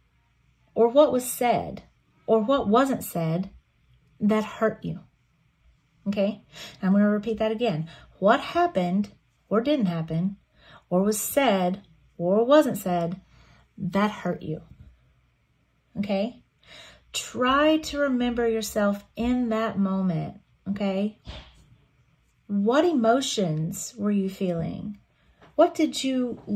Or what was said, or what wasn't said that hurt you, okay? I'm going to repeat that again. What happened, or didn't happen, or was said, or wasn't said, that hurt you, okay? Try to remember yourself in that moment, okay? What emotions were you feeling? What did you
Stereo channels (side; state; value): both; identical; correlation 1.00